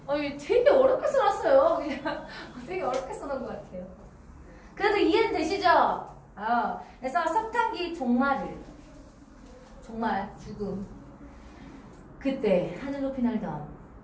되게 어렵게 써놨어요. 그냥 되게 어렵게 써놓은 것 같아요. 그래도 이해는 되시죠? 그래서 석탄기 종말, 죽음. 그때 하늘 높이 날던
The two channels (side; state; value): both; identical; correlation 1.00